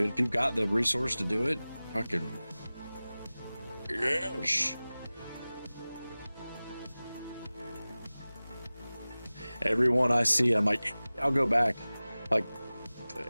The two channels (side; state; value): both; inverted; correlation -0.98